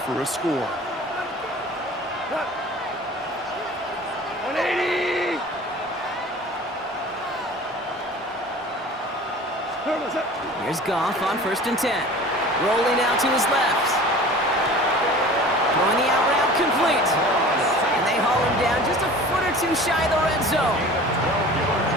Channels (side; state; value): both; normal; correlation 0.42